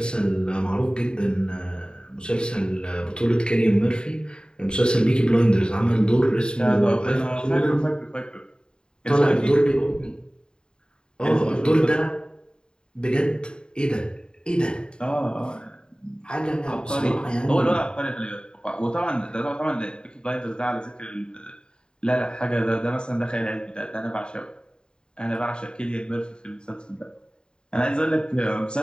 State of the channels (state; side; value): late; right; 0.049 ms